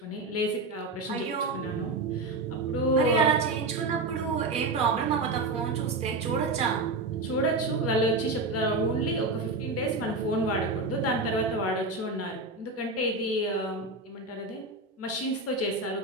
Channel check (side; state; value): left; quieter; 3.1 dB